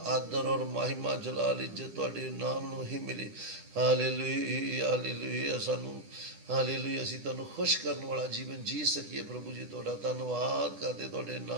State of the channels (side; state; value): left; late; 10 ms